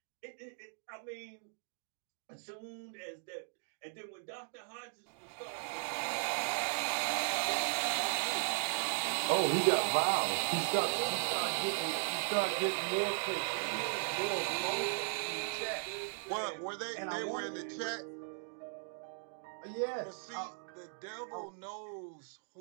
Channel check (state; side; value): silent; left; digital silence